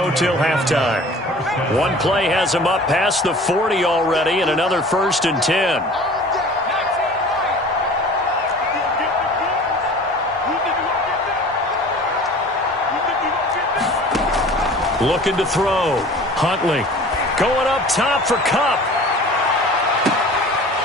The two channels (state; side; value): normal; both; correlation 0.44